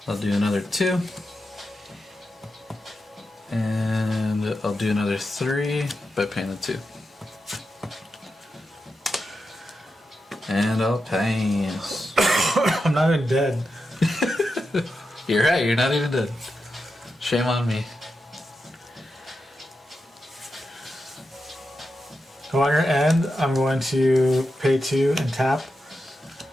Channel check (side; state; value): both; normal; correlation 0.88